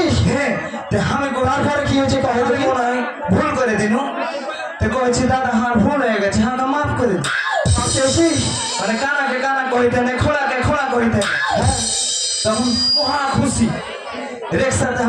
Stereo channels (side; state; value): both; identical; correlation 1.00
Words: হ্যাঁ আমি তার পরে কি হয়েছে কহে দেখি ভুল করে দিনু তো কইছি দাদা হার ভুল হয়ে গেছে হাঁকা মাফ করে দিন চেয়েছিস মানে কানাকে কানা কইতে নেই খোলাকে খোলা কইতে তখন মহা খুশি রিক্সাতে